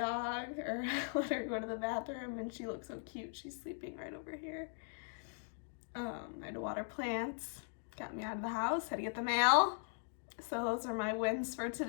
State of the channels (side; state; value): right; silent; digital silence